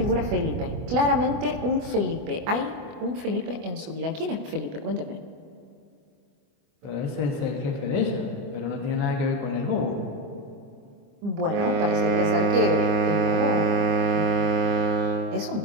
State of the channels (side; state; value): left; late; 24 ms